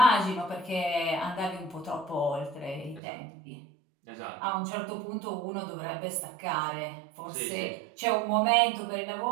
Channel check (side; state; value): left; drops out; at 3.0 s